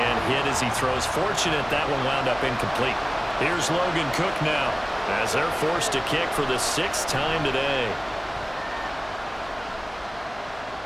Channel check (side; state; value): left; noise; hum, 22 dB below the sound